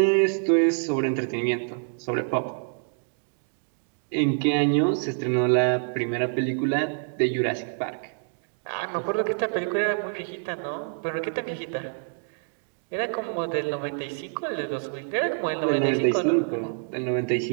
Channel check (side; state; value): left; silent; digital silence